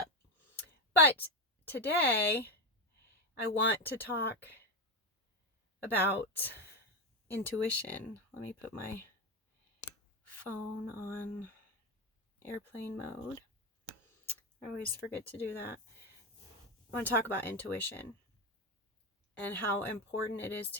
But today, I want to talk about intuition. Let me put my phone on airplane mode. I always forget to do that. I want to talk about intuition and how important it is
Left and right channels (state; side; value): normal; both; correlation 0.13